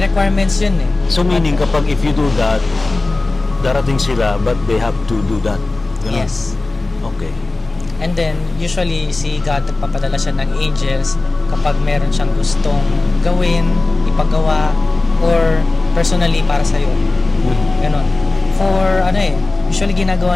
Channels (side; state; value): right; quieter; 3.2 dB